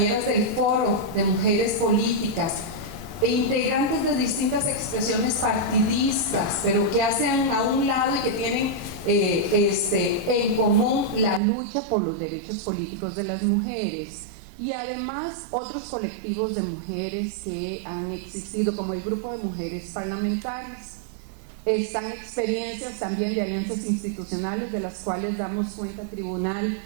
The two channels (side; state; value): left; drops out; at 11.4 s